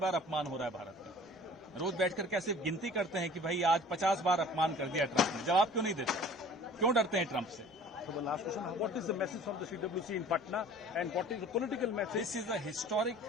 बार अपमान हो रहा है भारत का? रोज बैठकर क्या सिर्फ गिनती करते हैं कि भाई आज 50 बार अपमान कर दिया ट्रंप ने? जवाब क्यों नहीं देते? क्यों डरते हैं ट्रंप से? So the last question, what is the message from the CWC in Patna and what is the political message? This is the historic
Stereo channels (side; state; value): both; normal; correlation 0.47